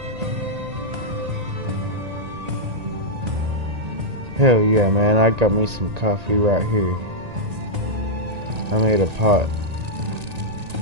Hell yeah, man, I got me some coffee right here. I made a pot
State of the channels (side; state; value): left; late; 1.9 ms